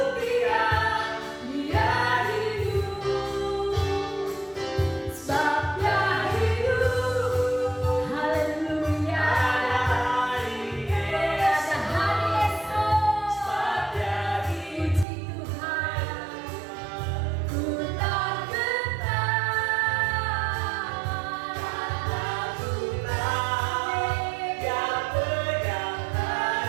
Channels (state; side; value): drops out; left; at 15.1 s